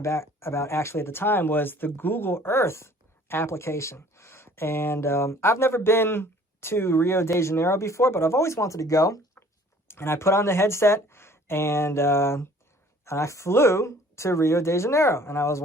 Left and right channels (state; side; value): normal; both; correlation 0.53